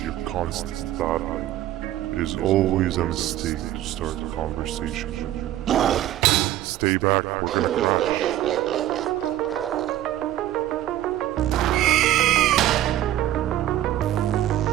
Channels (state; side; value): quieter; left; 13.4 dB